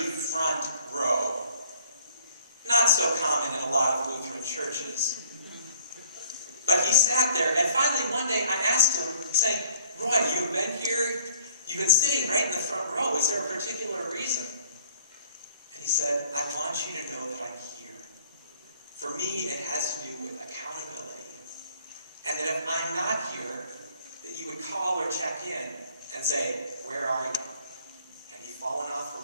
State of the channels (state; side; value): inverted; both; correlation -0.54